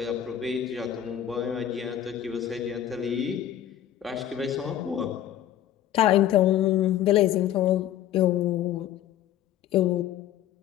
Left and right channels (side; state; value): right; quieter; 11.3 dB